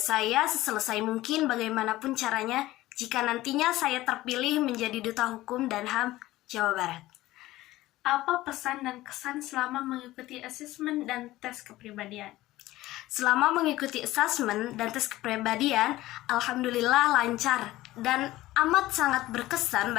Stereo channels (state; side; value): quieter; right; 16.8 dB